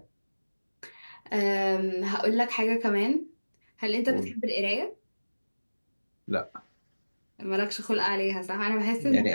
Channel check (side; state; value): both; inverted; correlation -1.00